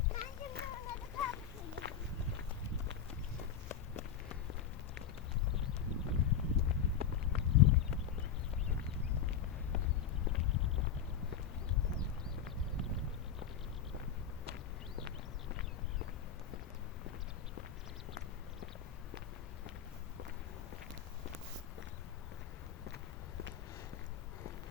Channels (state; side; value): quieter; right; 8.1 dB